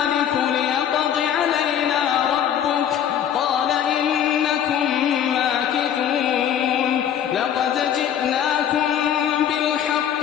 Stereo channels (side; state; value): right; quieter; 9.5 dB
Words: ليقض علينا ربك قال إنكم ماكثون لقد جئناكم بالحق